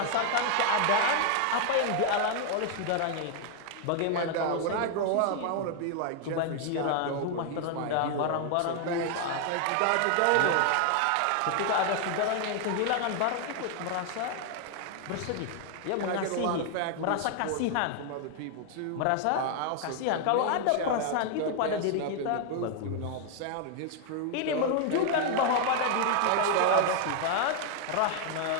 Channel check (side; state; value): both; different; correlation 0.00